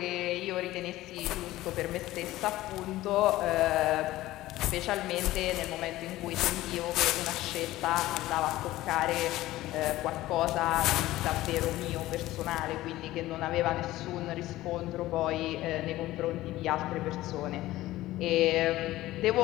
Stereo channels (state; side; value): quieter; right; 16.4 dB